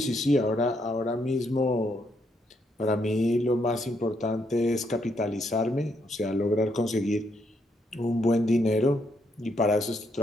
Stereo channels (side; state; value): both; normal; correlation 0.75